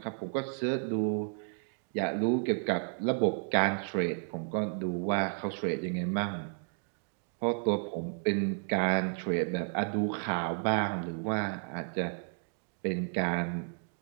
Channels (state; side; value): silent; left; 55 dB below the other